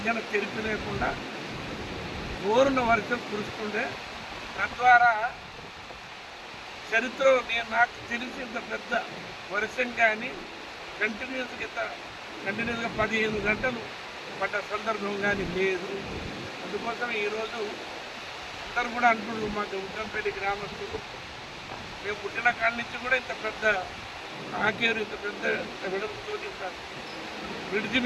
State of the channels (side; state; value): both; identical; correlation 1.00